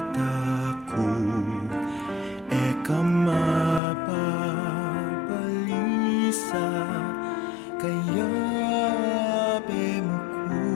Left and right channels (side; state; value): right; drops out; at 3.8 s